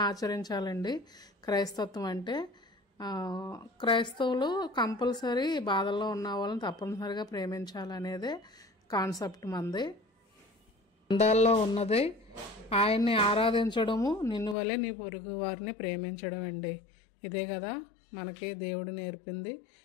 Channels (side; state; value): right; drops out; at 14.6 s